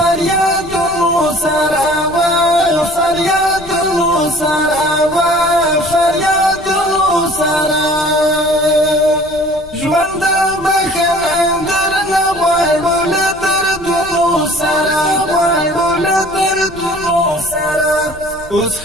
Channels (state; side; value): noise; left; rumble, 20 dB below the sound